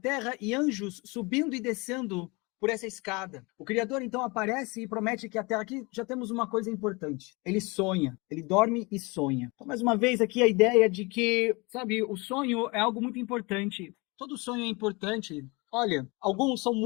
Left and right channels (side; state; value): right; quieter; 26.6 dB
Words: e anjos subindo e descendo por essa escada. O Criador então aparece e promete que a terra... Aqui já temos uma coisa importante. Ele sonha, ele dorme e sonha. Então, mais uma vez aqui a ideia de que, sabe, o sonho é algo muito importante. Todo sonho é importante. Olha, alguns são